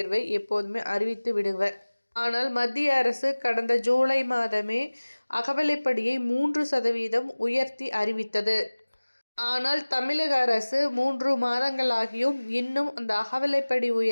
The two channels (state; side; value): inverted; both; correlation -1.00